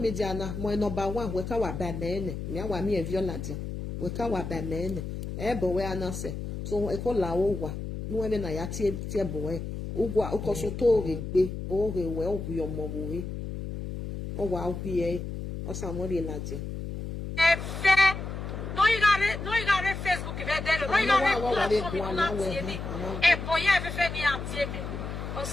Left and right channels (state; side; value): noise; left; hum, 6 dB below the sound